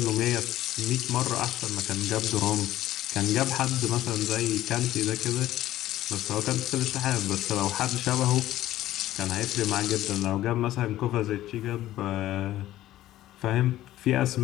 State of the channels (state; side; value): quieter; right; 14.4 dB